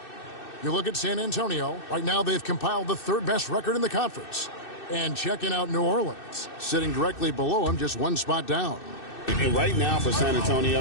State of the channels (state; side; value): late; right; 2.6 ms